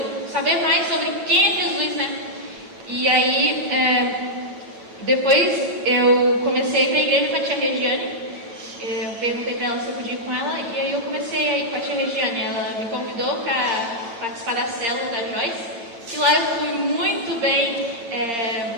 saber mais sobre quem é Jesus, né? E aí, depois eu comecei a ir pra igreja com a tia Regiane. Eu perguntei para ela se eu podia ir com ela, e aí eu comecei a ir com a tia Regiane. Ela me convidou para participar da célula da Joyce, e lá eu fui muito bem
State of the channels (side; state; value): left; late; 9.1 ms